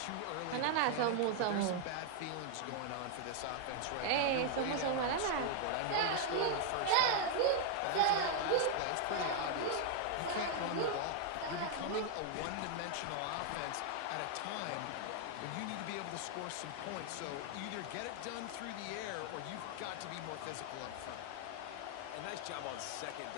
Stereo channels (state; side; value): different; both; correlation 0.00